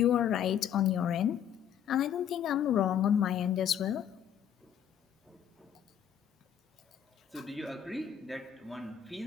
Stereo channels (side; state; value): right; quieter; 9.3 dB